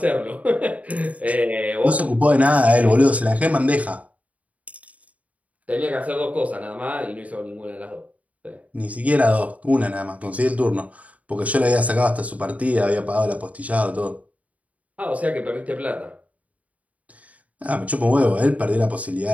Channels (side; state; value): left; late; 0.069 ms